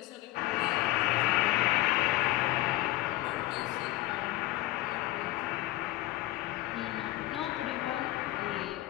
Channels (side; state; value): right; quieter; 17.6 dB